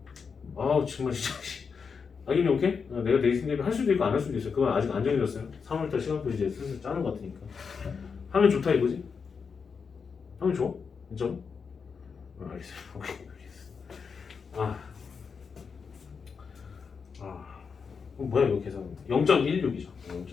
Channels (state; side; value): quieter; right; 5.7 dB